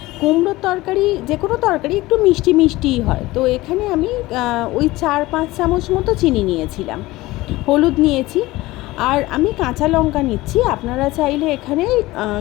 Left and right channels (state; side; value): quieter; right; 19.0 dB